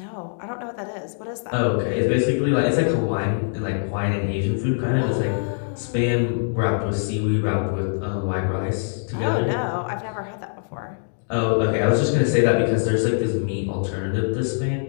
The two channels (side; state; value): right; silent; digital silence